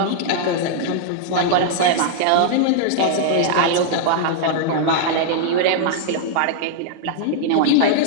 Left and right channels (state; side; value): different; both; correlation -0.01